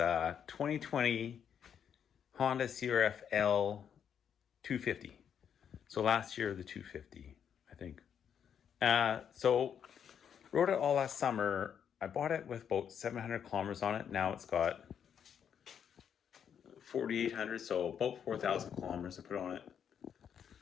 Honda CRF250L. So last year, the 250, I think. So rode it all last summer. I bought it with about 700 kilometers on it. Now it's got 4,800, so about 4,000 kilometers I put on it.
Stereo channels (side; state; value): right; quieter; 8.2 dB